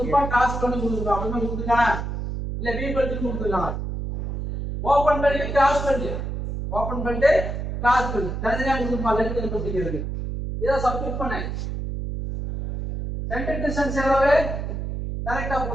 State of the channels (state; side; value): noise; right; hum, 4 dB below the sound